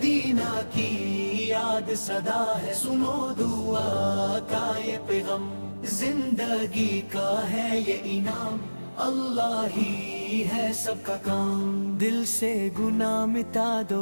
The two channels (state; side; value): inverted; both; correlation -1.00